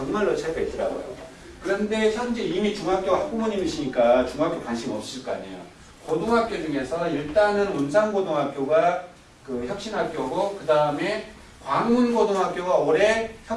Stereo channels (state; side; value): identical; both; correlation 1.00